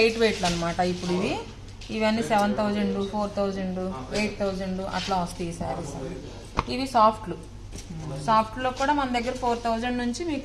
వెయిట్లు అనమాట. ఇప్పుడు ఇవన్నీ 7,000, 4,000, 8,000 అట్లా వస్తాయి ఈ శారీస్. ఇవి సాఫ్ట్లో కూడా మన దగ్గర 4,000 నుంచి మీకు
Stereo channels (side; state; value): both; identical; correlation 1.00